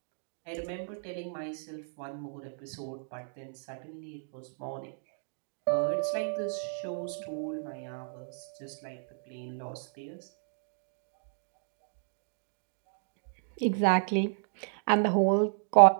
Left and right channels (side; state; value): left; silent; digital silence